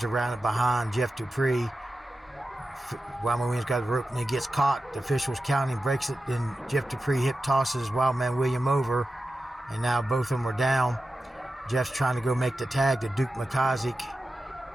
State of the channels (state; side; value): normal; both; correlation 0.92